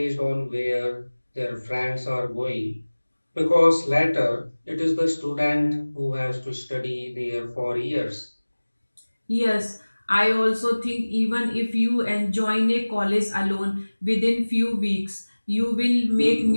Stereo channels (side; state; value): both; inverted; correlation -1.00